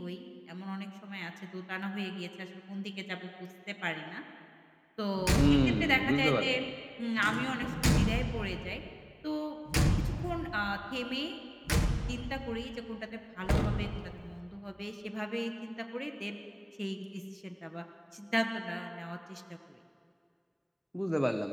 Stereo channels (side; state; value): both; identical; correlation 1.00